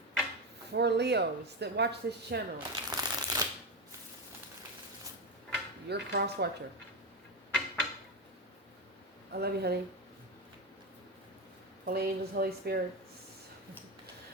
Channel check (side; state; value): both; normal; correlation 0.14